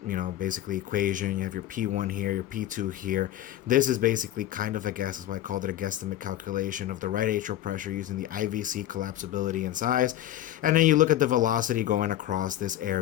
basically equation, you have your P1 here, your P2 here. This is basically kind of a guess. That's why I called it a guesstimate calculation of the right atrial pressure using the IVC collapsibility and size. And then you look at the velocity going across this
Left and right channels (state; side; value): quieter; right; 12.8 dB